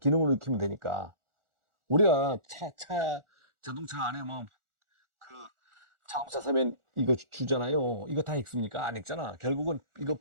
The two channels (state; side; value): late; left; 1.4 ms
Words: 익히면 되니까. 우리가 자동차 안에 뭐 그 자동차 사면 이거 주잖아요. 이거 다 읽습니까? 안 읽잖아. 결국은 이거